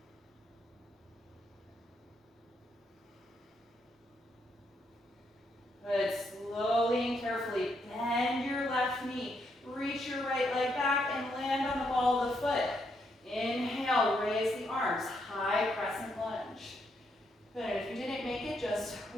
Good, slowly and carefully bend your left knee. Reach your right leg back and land on the ball of the foot. Inhale, raise the arms, high crescent lunge. Good, and if you didn't make it, just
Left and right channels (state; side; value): normal; both; correlation 0.77